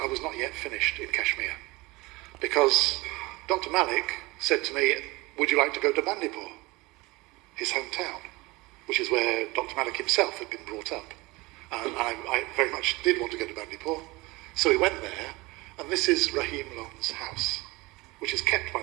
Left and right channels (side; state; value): left; quieter; 22.6 dB